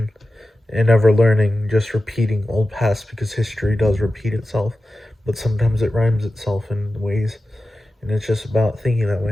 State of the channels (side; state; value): both; normal; correlation 0.93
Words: and never learning, just repeating old past because history does repeat itself, but sometimes it rhymes itself in ways, and it's just about thinking that